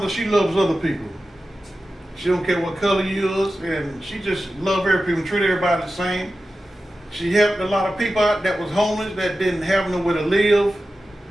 she loves other people. She don't care what color you is, and she just love every people, treat everybody the same. She helped a lot of people out that was homeless, that didn't have nowhere to live.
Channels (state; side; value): normal; both; correlation 0.93